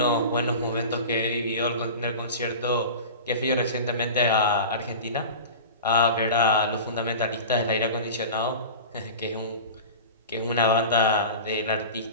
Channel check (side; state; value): both; inverted; correlation -0.33